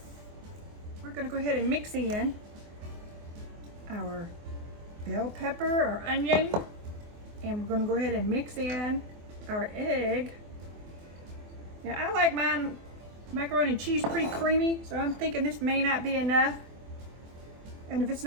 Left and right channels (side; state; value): left; late; 24 ms